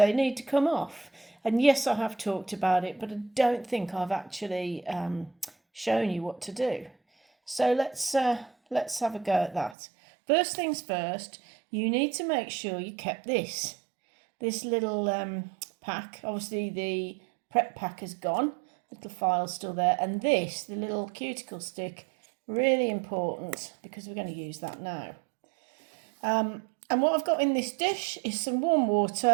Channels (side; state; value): left; drops out; at 9.8 s